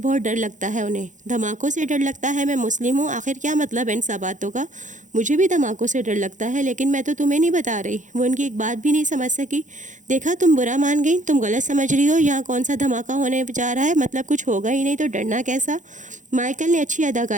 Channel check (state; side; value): late; left; 0.36 ms